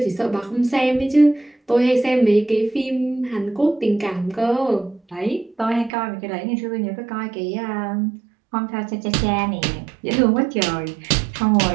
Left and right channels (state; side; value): drops out; left; at 5.9 s